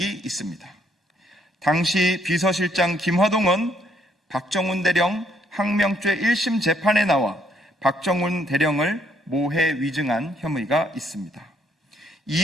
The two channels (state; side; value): normal; both; correlation 0.69